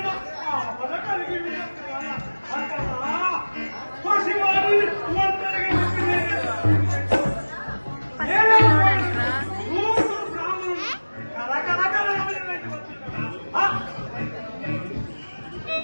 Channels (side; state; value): both; inverted; correlation -1.00